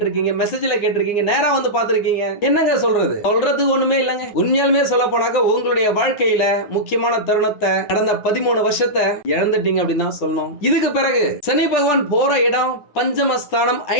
மெசேஜ்ல கேட்டிருக்கீங்க, நேரா வந்து பாத்திருக்கீங்க. என்னங்க சொல்றது ஒண்ணுமே இல்லங்க. உண்மையாலுமே சொல்ல போனாக்க உங்களுடைய வாழ்க்கையில முக்கியமான தருணத்தை கடந்த 13 வருஷத்தை இழந்துட்டீங்க அப்படின்னு தான் சொல்லணும். இதுக்கு பிறகு சனி பகவான் போற இடம் பஞ்சமஸ்தானம்,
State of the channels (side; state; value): right; late; 9.4 ms